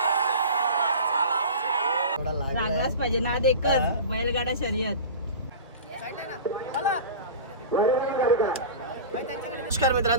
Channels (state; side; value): inverted; both; correlation -0.33